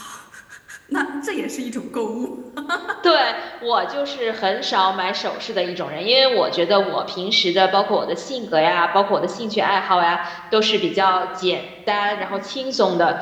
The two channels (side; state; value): both; identical; correlation 1.00